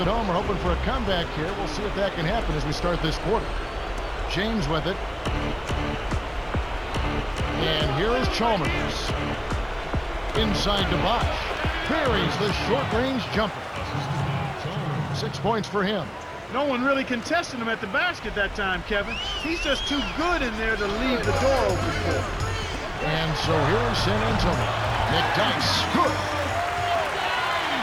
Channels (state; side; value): identical; both; correlation 1.00